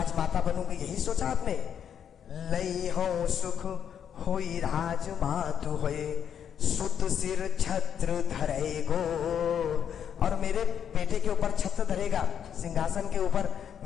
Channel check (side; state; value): right; quieter; 8.5 dB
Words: बनूंगी, यही सोचा आपने? लई हो सुख होई राजमातु होए, सुत सिर छत्र धरेगो। और मेरे बेटे के ऊपर छत्र धरेगा, सिंहासन के ऊपर